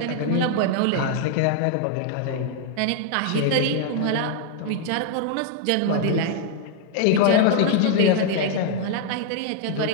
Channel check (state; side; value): different; both; correlation 0.00